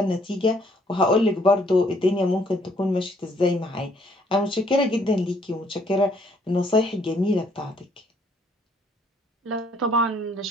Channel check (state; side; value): normal; both; correlation 0.65